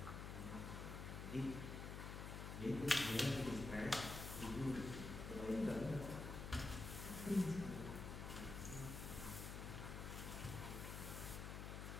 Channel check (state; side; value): noise; left; hum, 5 dB below the sound